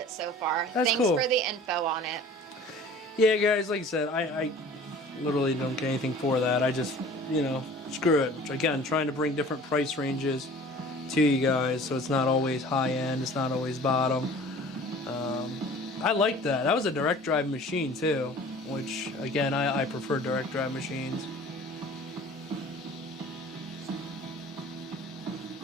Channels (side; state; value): both; normal; correlation 0.45